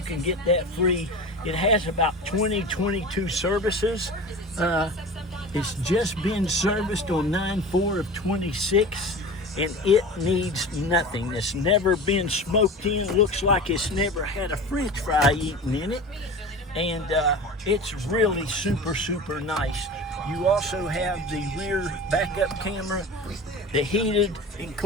can get that free. It has about 22 services. It's just been serviced on 9/4 of 26, and it needs nothing. It's never been smoked in. Looks like it's never had a French fry eaten in it. And it's really super, super nice. You also have the rear backup camera, the heated and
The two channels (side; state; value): both; normal; correlation 0.34